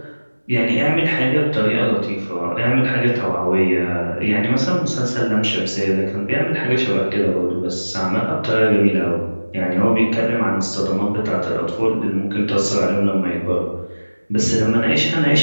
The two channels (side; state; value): both; inverted; correlation -1.00